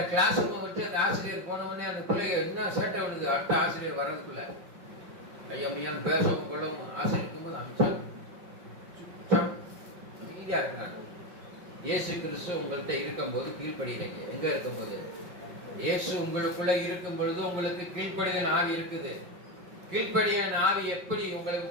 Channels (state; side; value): late; left; 5.5 ms